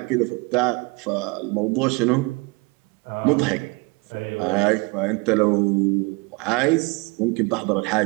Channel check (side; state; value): left; quieter; 27.1 dB